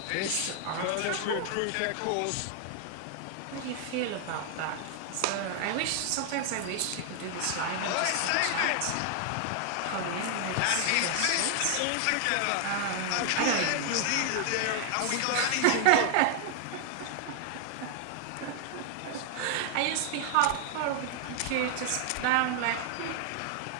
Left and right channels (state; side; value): different; both; correlation 0.00